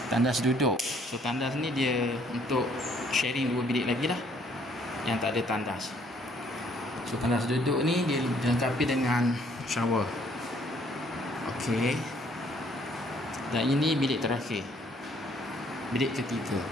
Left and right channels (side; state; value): both; normal; correlation 0.64